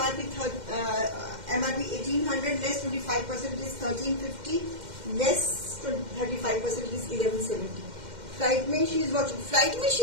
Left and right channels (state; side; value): late; left; 2.1 ms